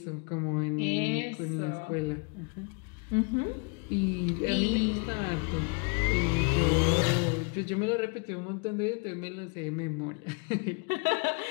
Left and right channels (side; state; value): right; quieter; 35.2 dB